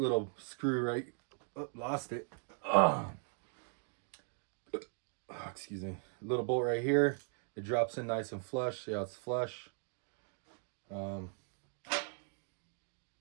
screw right, oh, lost it. Oh, excuse me. Little bolt right here. It drops in nice and flush. See how it's flush.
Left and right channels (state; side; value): silent; left; 52 dB below the other